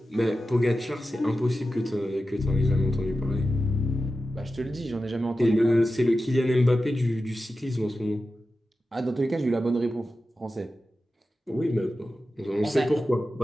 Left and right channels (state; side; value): normal; both; correlation 0.92